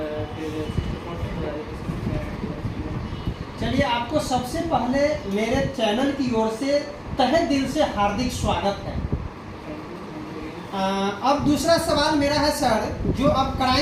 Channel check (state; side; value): identical; both; correlation 1.00